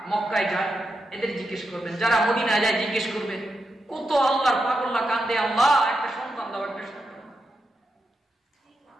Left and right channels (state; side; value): normal; both; correlation 0.86